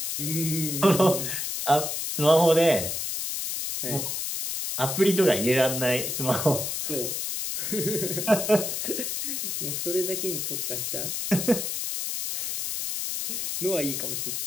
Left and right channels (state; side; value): noise; left; hiss, 3 dB below the sound